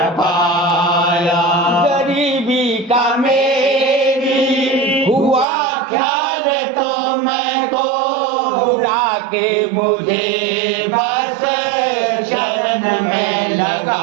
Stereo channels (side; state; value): left; drops out; at 5.5 s